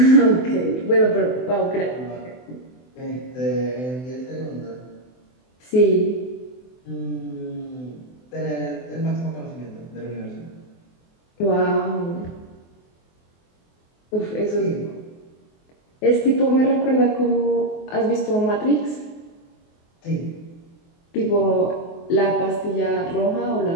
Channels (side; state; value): right; late; 24 ms